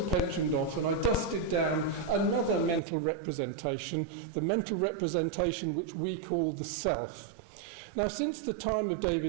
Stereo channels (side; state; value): left; drops out; at 2.8 s